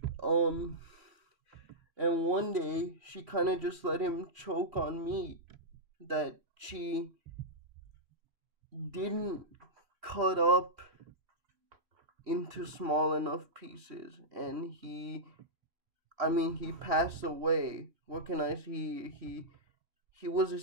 Um, and one day, she kind of just let him choke on meat that she didn't cut up into small enough pieces. And he passed away. What can I say? He was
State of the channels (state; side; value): late; left; 3.2 ms